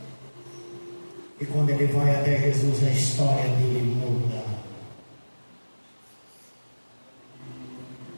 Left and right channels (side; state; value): both; inverted; correlation -1.00